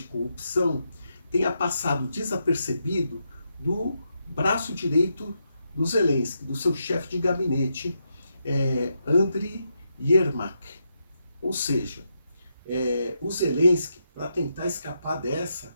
corrupção tenha passado desapercebido do braço direito do Zelensky, do seu chefe de gabinete, Andriy Yermak. Ou seja, o Zelensky, para tentar escapar dessa,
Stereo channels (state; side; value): inverted; both; correlation -0.82